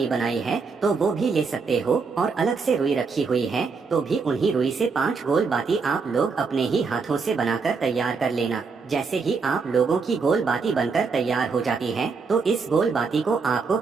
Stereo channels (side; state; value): left; quieter; 4.9 dB